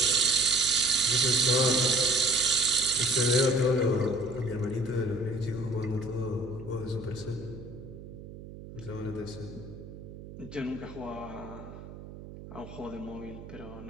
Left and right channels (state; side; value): noise; right; hum, 14 dB below the sound